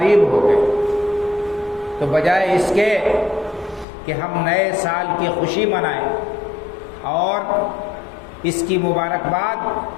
ہو گئے، تو بجائے اس کے کہ ہم نئے سال کی خوشی منائیں اور اس کی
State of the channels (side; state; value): right; drops out; at 3.9 s